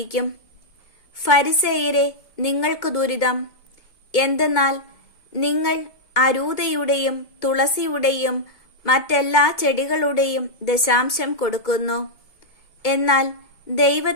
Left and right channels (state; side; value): late; right; 2.2 ms